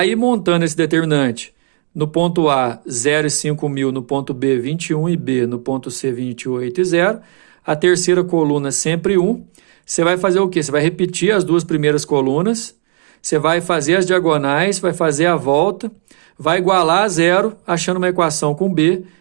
montando esse determinante, no ponto A, 0 e 5.000, no ponto B, 21 e B, no ponto C, 28 e 0, a terceira coluna sempre 1, você vai fazer o quê? Você vai repetir as duas primeiras colunas, você vai fazer as diagonais, vai fazer a volta, vai igualar a 0, achando uma equação com B,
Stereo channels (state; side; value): silent; left; 56 dB below the other